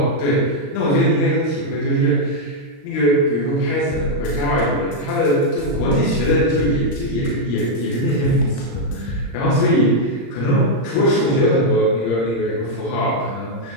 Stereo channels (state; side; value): late; right; 35 ms